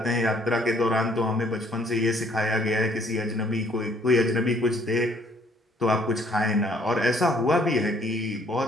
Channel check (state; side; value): normal; both; correlation 0.62